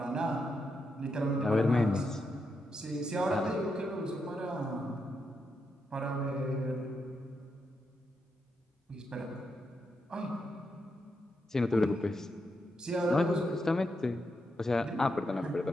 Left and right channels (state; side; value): normal; both; correlation 0.83